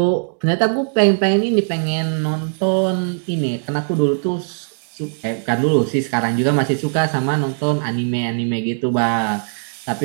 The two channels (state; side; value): silent; left; digital silence